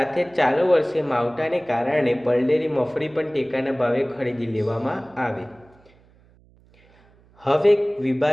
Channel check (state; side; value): noise; right; hum, 30 dB below the sound